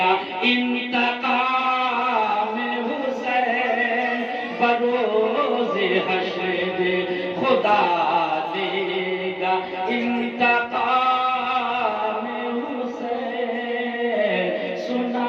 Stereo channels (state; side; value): identical; both; correlation 1.00